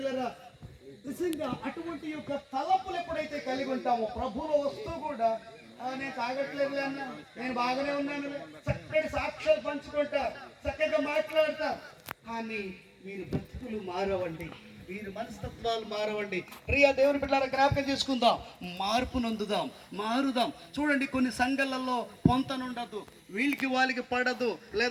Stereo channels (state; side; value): identical; both; correlation 1.00